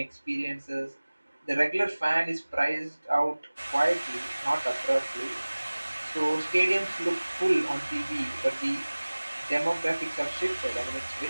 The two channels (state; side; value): inverted; both; correlation -1.00